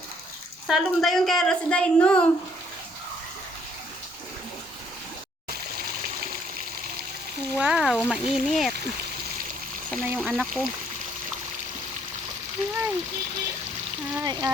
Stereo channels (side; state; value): both; normal; correlation 0.65